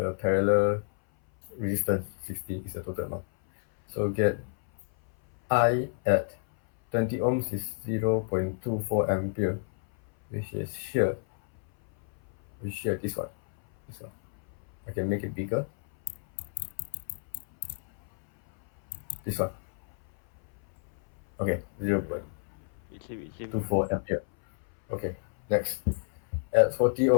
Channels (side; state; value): right; silent; 57 dB below the other